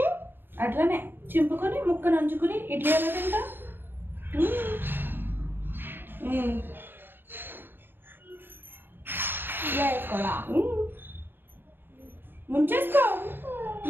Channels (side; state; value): left; late; 0.10 ms